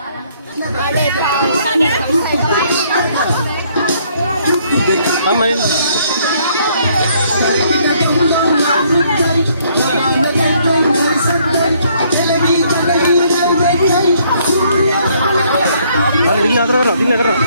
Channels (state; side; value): inverted; both; correlation -0.66